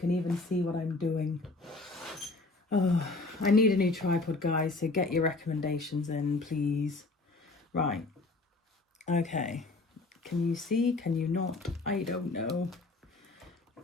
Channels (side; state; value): right; quieter; 3.4 dB